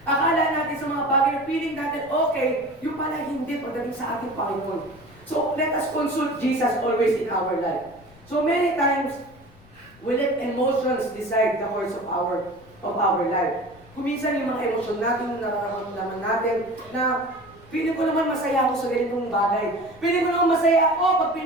Akala natin sa mga bagay na feeling natin, okay, yung pala hindi pagdating sa ating Panginoon. So, let us consult Jesus always in our life. So many times, we let emotions decide the course of our life. Kung minsan yung mga emosyon natin, nararamdaman natin, na feeling ko naman masaya ako sa ganitong bagay. Feeling ko naman masaya ako pag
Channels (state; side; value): noise; left; rumble, 25 dB below the sound